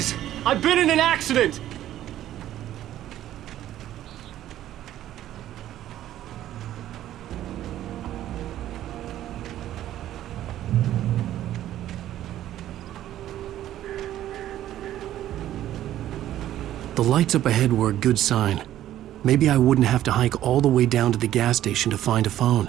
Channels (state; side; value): quieter; left; 12.7 dB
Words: I've been in an accident. The lights up ahead were a good sign. Maybe I wouldn't have to hike all the way down to the gas station to find a